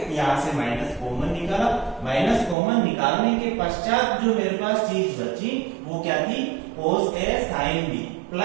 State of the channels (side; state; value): left; drops out; at 2.6 s